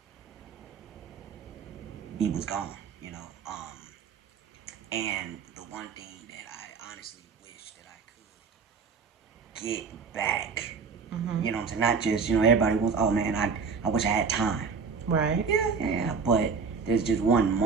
He was gone, and the one thing that I honestly wish that I could get back, you know what I'm saying? Not just, everybody wants, oh man, I wish I had time. Right. Yeah, but there's just one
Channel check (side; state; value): left; quieter; 5.4 dB